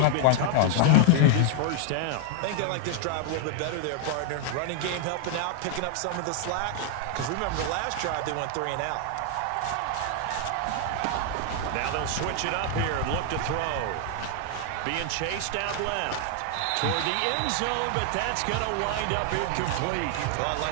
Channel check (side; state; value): both; different; correlation 0.00